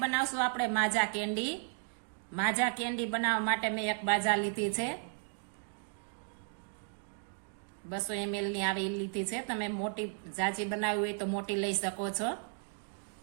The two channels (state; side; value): silent; left; 55 dB below the other